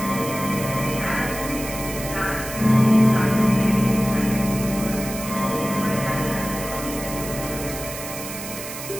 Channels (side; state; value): right; noise; hiss, 9 dB below the sound